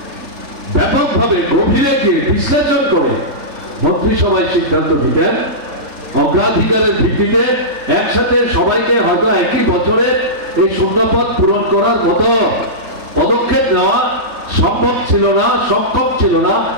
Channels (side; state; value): left; late; 3.6 ms